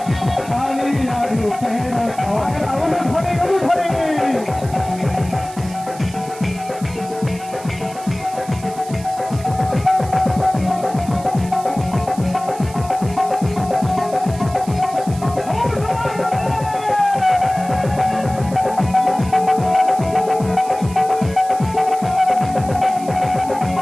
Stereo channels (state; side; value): noise; right; hiss, 18 dB below the sound